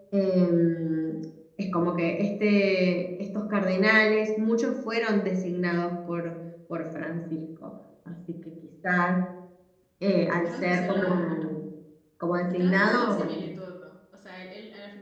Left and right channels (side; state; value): both; identical; correlation 1.00